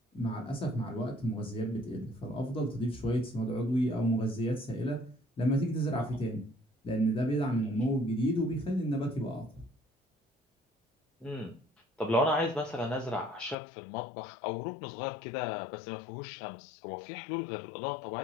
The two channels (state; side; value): drops out; right; at 13.6 s